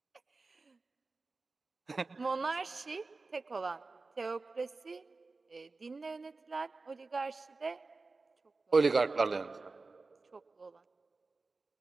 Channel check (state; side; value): quieter; left; 3.8 dB